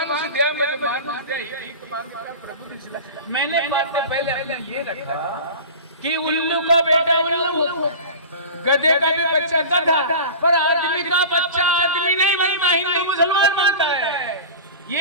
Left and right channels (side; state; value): both; inverted; correlation -0.33